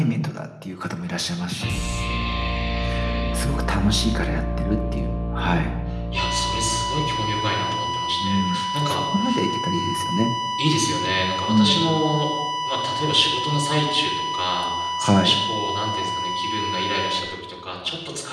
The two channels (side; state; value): both; identical; correlation 1.00